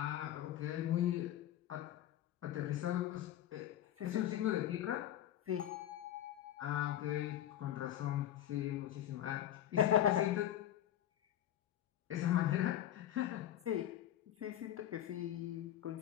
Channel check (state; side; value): quieter; right; 12.0 dB